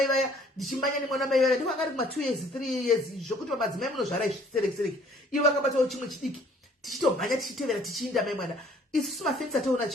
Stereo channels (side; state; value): both; normal; correlation 0.58